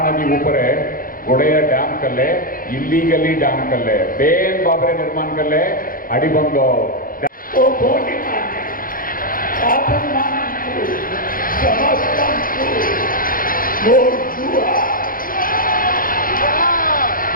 ऊपर गोड़े डैम कले इलीगली डैम कले बेन बाबरे निर्माण कले अड़बंद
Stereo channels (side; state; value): right; late; 0.41 ms